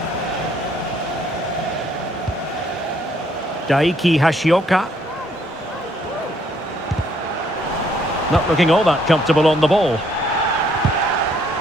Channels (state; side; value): normal; both; correlation 0.67